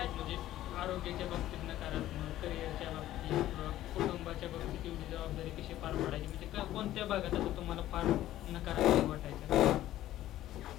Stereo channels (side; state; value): right; quieter; 13.9 dB